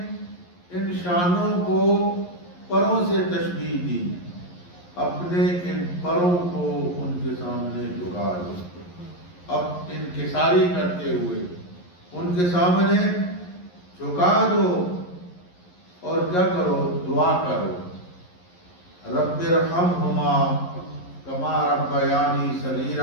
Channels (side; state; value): right; late; 11 ms